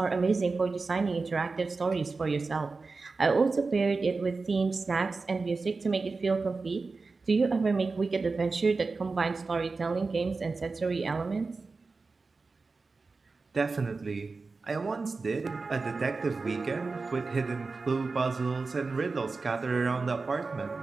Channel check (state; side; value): quieter; left; 4.1 dB